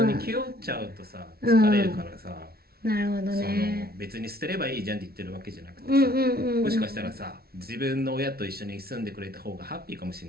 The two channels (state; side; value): late; left; 0.44 ms